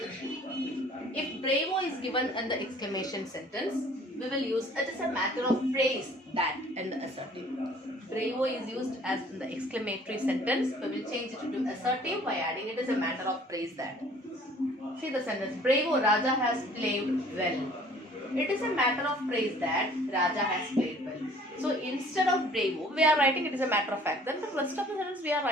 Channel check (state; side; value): normal; both; correlation 0.54